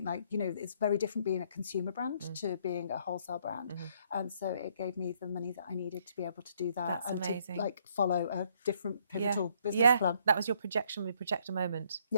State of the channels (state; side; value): inverted; both; correlation -0.67